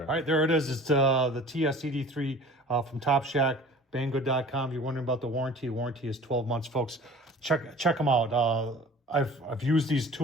All right, there it is. It's the TS-ED3 from Topshak, banggood.com. If you're wondering about the warranty is 12 months, folks. Check them out. I've used these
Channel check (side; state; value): both; normal; correlation 0.45